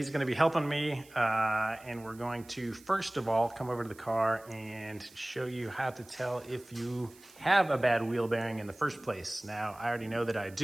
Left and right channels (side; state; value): right; noise; hiss, 24 dB below the sound